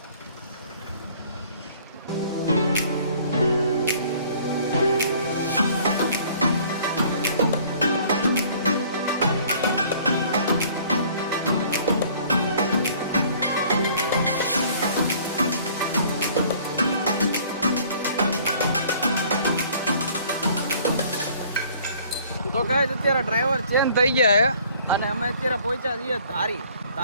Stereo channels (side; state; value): both; inverted; correlation -0.55